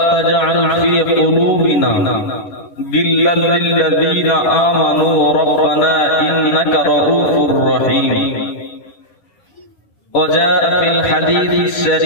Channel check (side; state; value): right; late; 10 ms